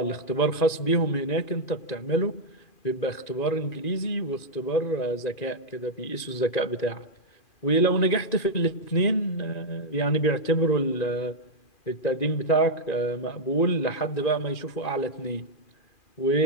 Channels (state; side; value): late; right; 2.4 ms